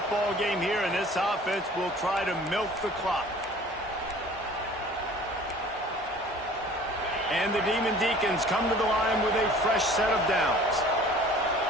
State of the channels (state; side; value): normal; both; correlation 0.48